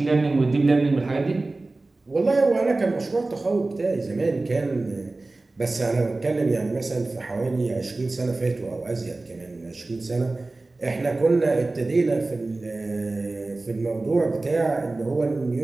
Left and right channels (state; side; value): quieter; left; 3.2 dB